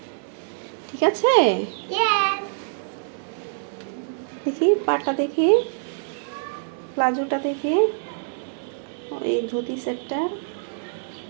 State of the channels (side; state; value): left; silent; 62 dB below the other